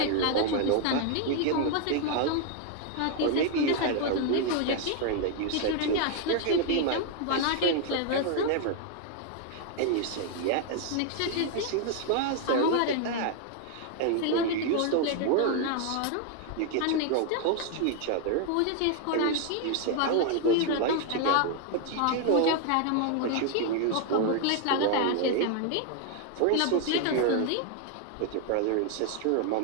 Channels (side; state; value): both; different; correlation 0.00